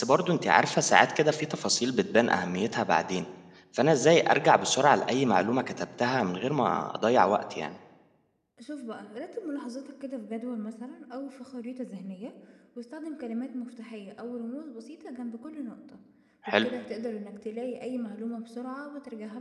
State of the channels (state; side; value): identical; both; correlation 1.00